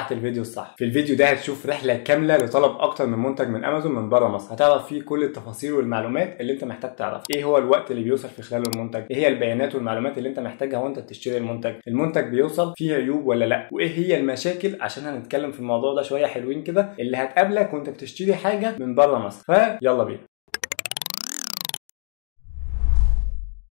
الفيديو الصح. في الفيديو ده هتشوف رحله كامله لطلب اكتر من منتج من امازون من بره مصر، هتعرف فيه كل التفاصيل والمعلومات اللي انت محتاج تعرف. ايه هو الوقت اللي بيوصل في خلاله المنتج، ايه هي البيانات والمعلومات اللي انت محتاجها وانت بتشتري المنتج بيوصل فيه عيوب ولا لا، وايه هي المشاكل، عشان هنتكلم في الموضوع ده شويه حلوين كده اللي هتقابلك وانت بتشتري حاجه من بره مصر. فيلا بينا.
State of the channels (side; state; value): right; silent; digital silence